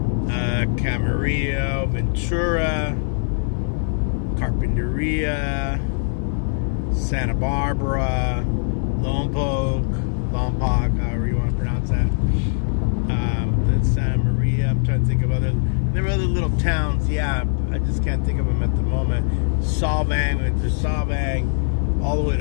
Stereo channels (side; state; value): right; silent; digital silence